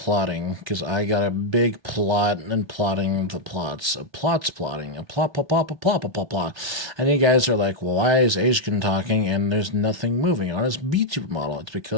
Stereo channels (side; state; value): left; late; 1.2 ms